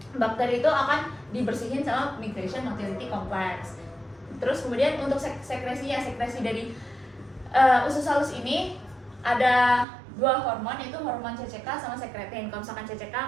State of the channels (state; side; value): drops out; left; at 9.9 s